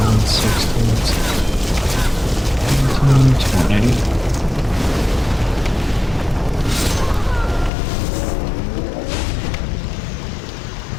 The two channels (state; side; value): drops out; right; at 7.7 s